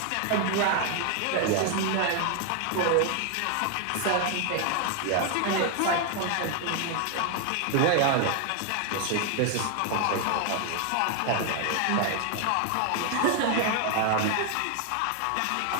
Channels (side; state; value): both; different; correlation 0.00